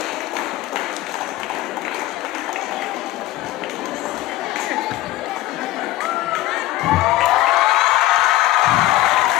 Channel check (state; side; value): quieter; right; 16.1 dB